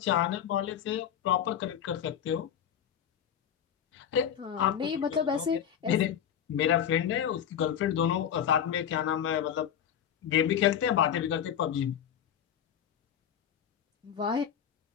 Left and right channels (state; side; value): quieter; right; 9.2 dB